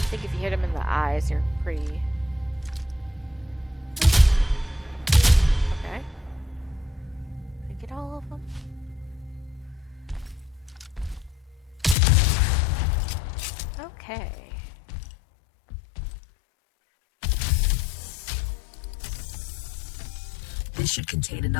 think if you hit them in the eyes, you're pretty... Okay. Did I get all of them? Okay. This should contain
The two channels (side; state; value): right; drops out; at 12.0 s